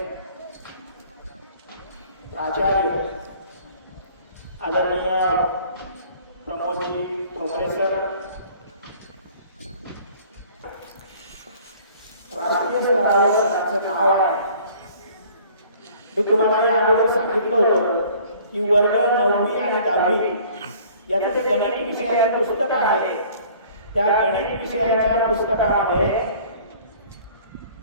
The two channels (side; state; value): both; inverted; correlation -0.52